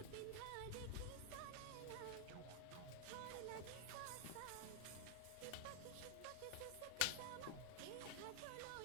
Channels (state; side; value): different; both; correlation 0.00